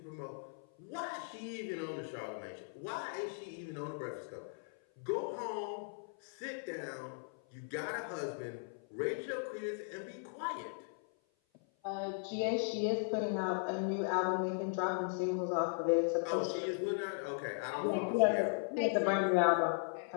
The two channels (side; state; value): right; silent; 53 dB below the other